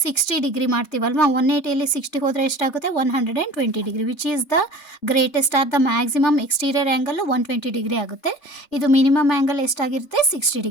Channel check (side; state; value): right; late; 3.4 ms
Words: 60 ಡಿಗ್ರಿ ಮಾಡ್ತೀವಲ್ವಾ. 180ಯಲ್ಲಿ 60 ಹೋದರೆ ಎಷ್ಟಾಗುತ್ತೆ, 120 degree. Which is the greatest are the maximum exterior angle 120 degree ಆಗುತ್ತೆ. ಇದು ಮಿನಿಮಮ್ ಆ್ಯಂಗಲ್ ಎಷ್ಟಾಗಿರುತ್ತೆ, 60